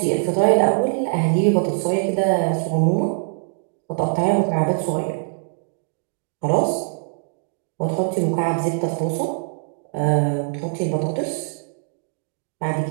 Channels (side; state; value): left; silent; digital silence